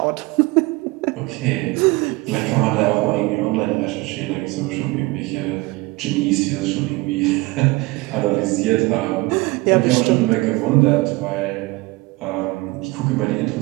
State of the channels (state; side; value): quieter; left; 22.6 dB